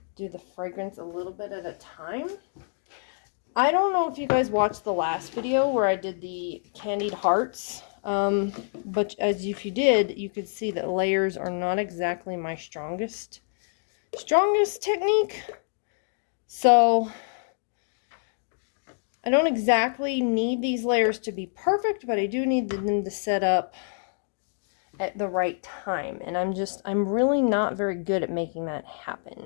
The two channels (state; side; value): silent; right; digital silence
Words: do the fragrance a little bit at a time. I don't know if you guys watched the last video where I did the candied hearts, but if you did, you could see that layers are not exactly my strongest technique. So I don't exactly need these layers to be perfect, but I do need them to set up at the right time, and I'm really not very good at making that